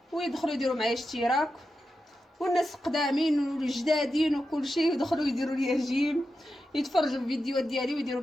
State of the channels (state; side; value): normal; both; correlation 0.89